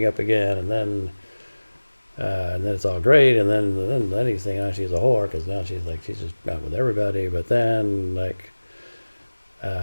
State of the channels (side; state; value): both; inverted; correlation -1.00